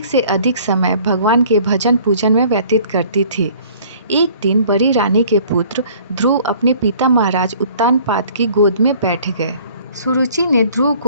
से अधिक समय भगवान के भजन पूजन में व्यतीत करती थी। एक दिन बड़ी रानी के पुत्र ध्रुव अपने पिता महाराज उत्तानपाद की गोद में बैठ गए। सुरुचि ने ध्रुव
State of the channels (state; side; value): inverted; both; correlation -0.54